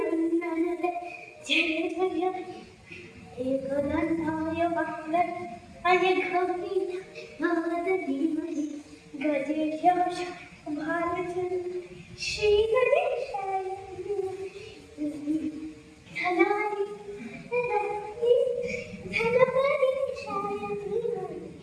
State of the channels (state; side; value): identical; both; correlation 1.00